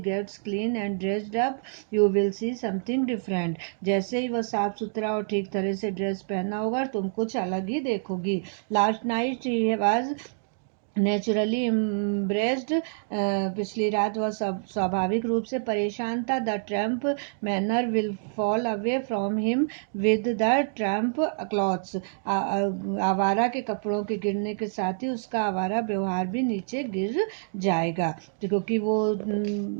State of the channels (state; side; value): silent; left; digital silence